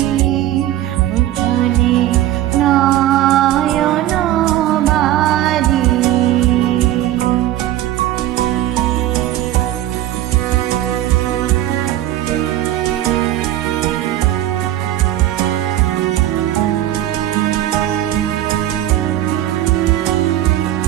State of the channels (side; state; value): left; quieter; 13.4 dB